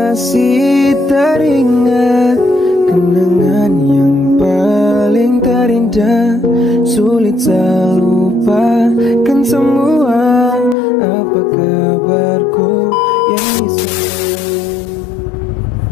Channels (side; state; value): right; drops out; at 10.8 s